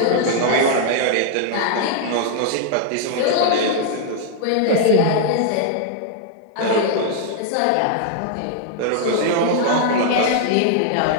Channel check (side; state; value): both; different; correlation -0.01